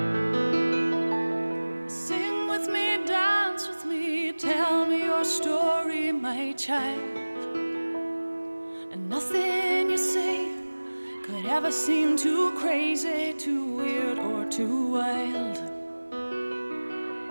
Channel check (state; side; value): inverted; both; correlation -1.00